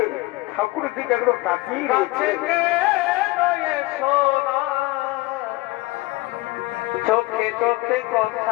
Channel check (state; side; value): quieter; right; 21.0 dB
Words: দিকে একদম তাকিয়ে রয়েছে। চোখে চোখে